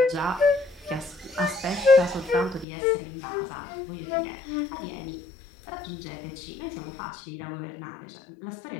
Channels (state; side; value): drops out; right; at 2.7 s